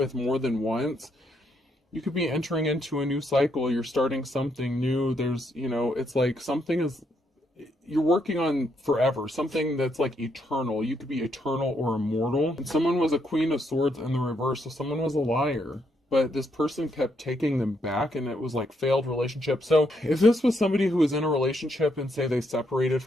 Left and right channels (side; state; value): both; normal; correlation 0.76